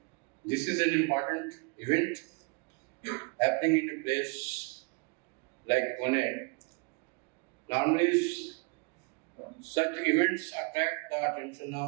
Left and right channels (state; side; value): quieter; left; 32.7 dB